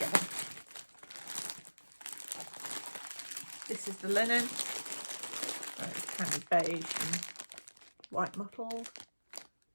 This is the linen. It's kind of beige and white mottled.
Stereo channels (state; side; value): inverted; both; correlation -1.00